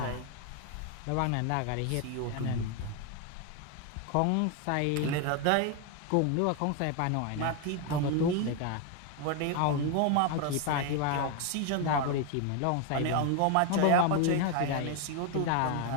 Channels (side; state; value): both; different; correlation 0.01